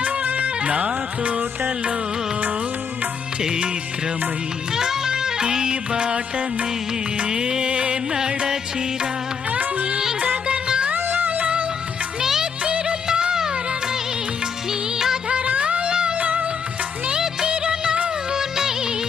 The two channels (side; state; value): right; quieter; 6.3 dB